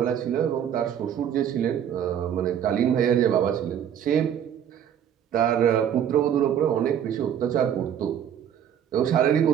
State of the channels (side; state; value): left; quieter; 9.3 dB